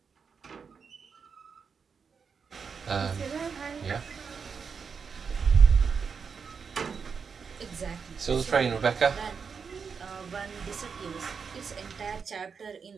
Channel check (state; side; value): quieter; left; 5.9 dB